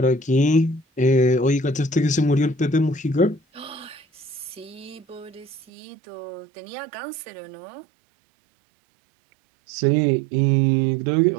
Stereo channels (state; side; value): drops out; left; at 5.6 s